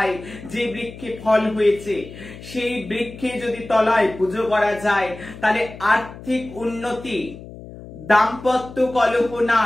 যে বৃক্ষে ফল হয়েছে সেই বৃক্ষে যদি তলায় পুজো করা যায়, তাহলে আর্থিক উন্নতি, দাম্পত্য কলহ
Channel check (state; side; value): noise; left; hum, 15 dB below the sound